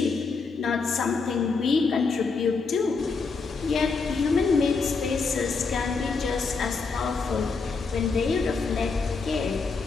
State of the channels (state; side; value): quieter; right; 4.6 dB